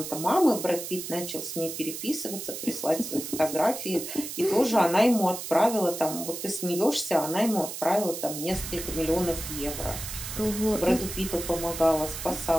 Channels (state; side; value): noise; right; hiss, 8 dB below the sound